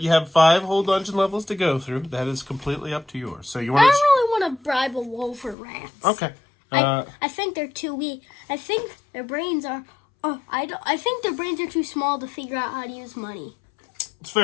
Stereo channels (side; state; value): right; drops out; at 5.6 s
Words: you have 5 whole dungeon levels to go through. That is completely up to yours. So you want I don't really want to bribe a wolf or rats. Okay. I think they're too weak. I think their brains are... I think their brains are too small to figure out how to use money. It's a